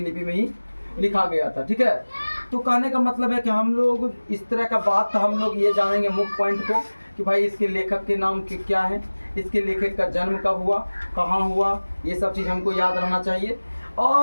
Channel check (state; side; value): inverted; both; correlation -1.00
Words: लिपि में ही लिखा गया था। ठीक है, तो कहने का मतलब है कि हम लोग इस तरह का बात हम लोग ये जानेंगे मुख्य पॉइंट को कि भाई इसके लेखक के नाम के क्या है, इसके लेखक का जन्म कब हुआ, कहाँ हुआ, ये सब चीज़ हमको याद रहना चाहिए।